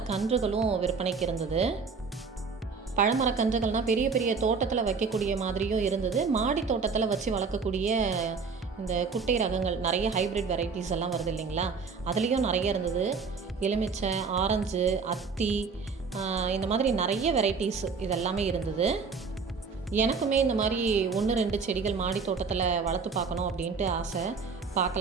விற்பனைக்கு இருந்தது. பழமரக்கன்றுகள்னால் பெரிய பெரிய தோட்டத்தில் வைக்கக்கூடிய மாதிரியும் இருந்தது. மாடி தோட்டத்தில் வச்சு வளர்க்கக்கூடிய இந்த குட்டை ரகங்கள், நிறைய ஹைப்ரிட் வெரைட்டிஸ் எல்லாம் வருது இல்லைங்களா, அதுலேயும் நிறைய இருந்தது. எலுமிச்சை, ஆரஞ்சு, அத்தி, இந்த மாதிரி நிறைய வெரைட்டிஸ் இதெல்லாமே இருந்தது. எனக்குமே இந்த மாதிரி 1-2 செடிகள் மாடி தோட்டத்தில் வளர்த்து பார்க்கணும் அப்படின்ட்டு ஆசை.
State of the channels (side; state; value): left; quieter; 5.0 dB